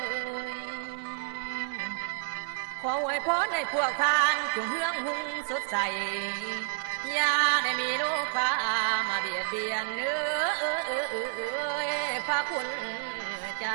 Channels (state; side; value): silent; left; 58 dB below the other